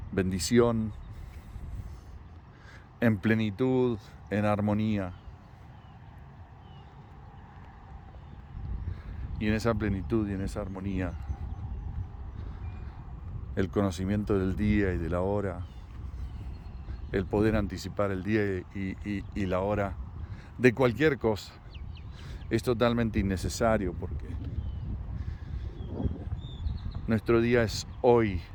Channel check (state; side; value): identical; both; correlation 1.00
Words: bendición, en plenitud, en armonía. Y en esa plenitud y en esa armonía, el conocimiento del día y de la hora, el poder anticipar el día y la hora de cualquier cosa, es totalmente innecesario porque nuestro día es hoy.